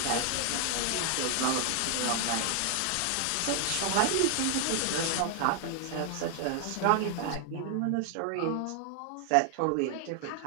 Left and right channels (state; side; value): different; both; correlation 0.00